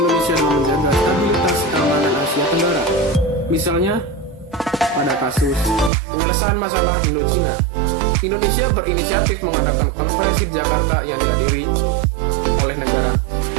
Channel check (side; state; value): left; drops out; at 5.9 s